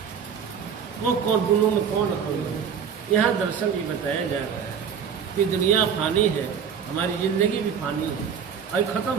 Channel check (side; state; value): left; quieter; 7.3 dB